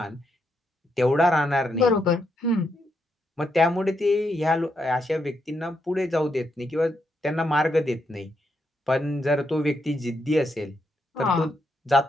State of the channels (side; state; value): both; normal; correlation 0.80